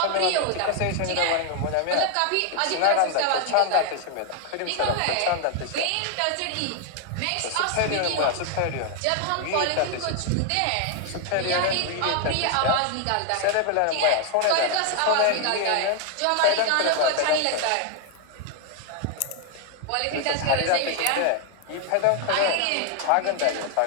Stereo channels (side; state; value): both; different; correlation 0.00